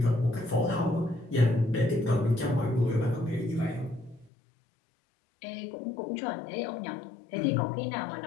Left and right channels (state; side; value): drops out; right; at 4.3 s